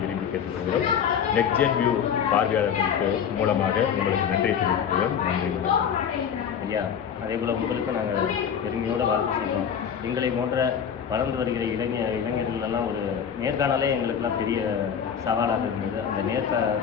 விரும்பி கேட்டுக்கொள்கிறோம். நெக்ஸ்ட் ஜென் வியூ பார்வையாளர்களுக்கு மூலமாக உங்களுக்கு நன்றி தெரிவிக்கிறோம். நன்றி ஐயா. அதே போல் உங்களுக்கு நாங்கள் பெருமையோடு வாழ்த்து செய்கிறோம். எங்களை போன்ற வளர்ந்து வருகிற இளைஞர்களெல்லாம் ஒரு நேர்காணலே எங்களுக்கெல்லாம் பெரிய சவாலாக இருந்தது. அந்த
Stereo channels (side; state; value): right; quieter; 7.9 dB